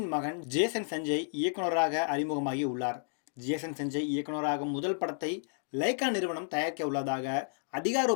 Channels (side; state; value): right; silent; digital silence